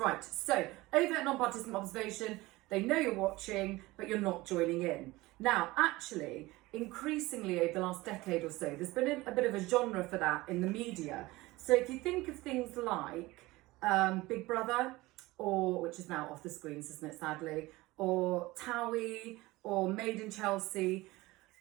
so overt non-participant observation, they know you're watching, but you're not joining in. Now, actually, increasingly over the last decade or so, there's been a bit of a genre for that in the media. So if you think of things like Big Brother, or which is now off the screens, isn't it, sadly, or Towie, or Made in Chelsea,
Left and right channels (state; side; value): quieter; left; 20.0 dB